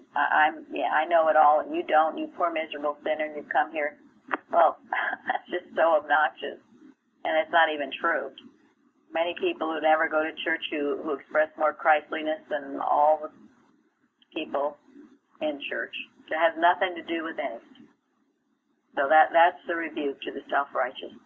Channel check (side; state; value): both; identical; correlation 1.00